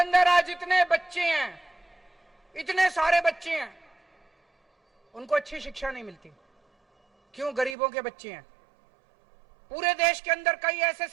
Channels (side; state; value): left; drops out; at 7.8 s